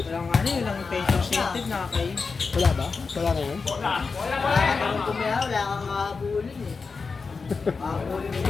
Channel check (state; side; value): quieter; right; 4.7 dB